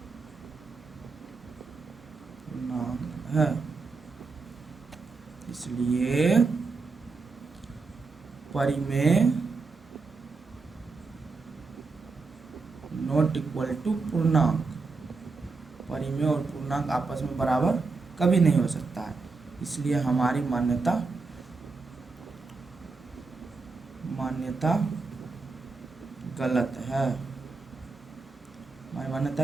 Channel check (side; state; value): left; quieter; 4.2 dB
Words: इसलिए परिमेय नॉट इक्वल टू पूर्णांक, परिमेय और पूर्णांक आपस में बराबर कभी नहीं हो सकता है, इसलिए हमारी मान्यता गलत है, हमारी